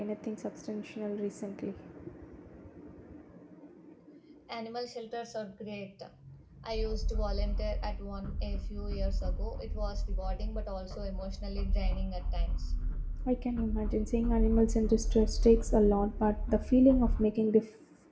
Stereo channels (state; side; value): identical; both; correlation 1.00